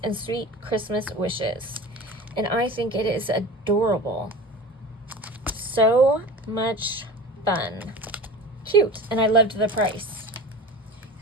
and sweet Christmas wishes. And I think it is adorable. So much fun. Cute. And I loved the price,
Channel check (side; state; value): both; normal; correlation 0.35